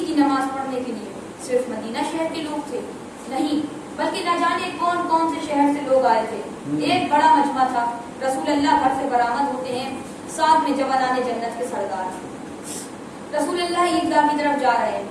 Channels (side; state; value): both; identical; correlation 1.00